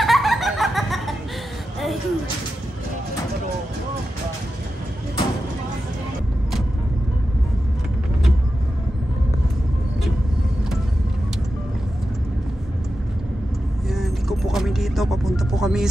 Dito, papunta po kami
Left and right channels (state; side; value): normal; both; correlation 0.91